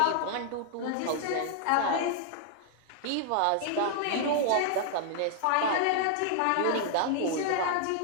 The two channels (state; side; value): different; both; correlation -0.01